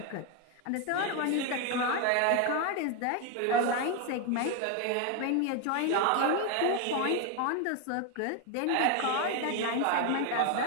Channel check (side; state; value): both; different; correlation 0.01